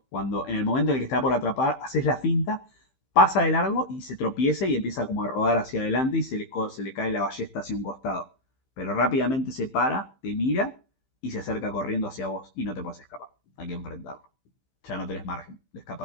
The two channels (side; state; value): right; late; 15 ms